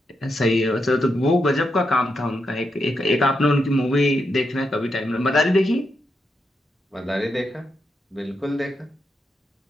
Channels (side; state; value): both; normal; correlation 0.83